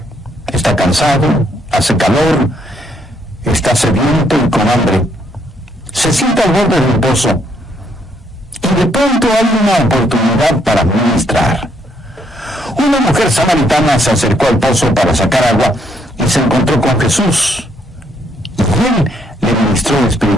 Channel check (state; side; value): normal; both; correlation 0.71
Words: Está cansado, hace calor, está sediento y con hambre. Se sienta al borde del pozo, y de pronto hay una oportunidad para ministrar. Una mujer samaritana se acercó al pozo para sacar agua y se encontró con Jesús, y él le ministró